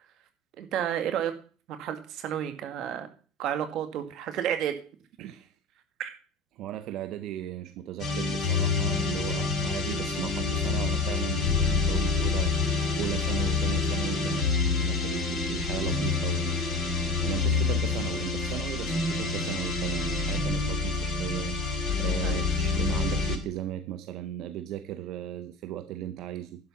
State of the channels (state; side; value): normal; both; correlation 0.32